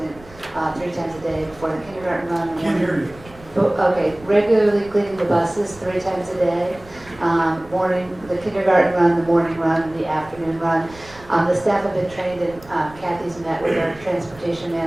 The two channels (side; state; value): right; noise; rumble, 21 dB below the sound